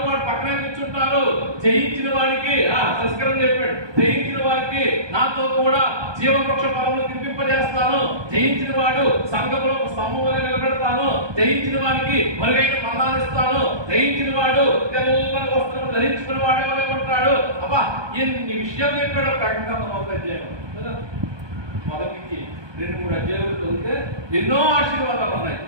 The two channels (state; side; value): late; left; 1.2 ms